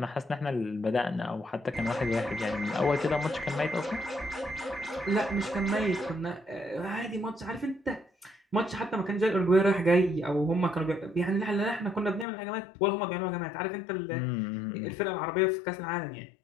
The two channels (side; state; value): right; drops out; at 12.2 s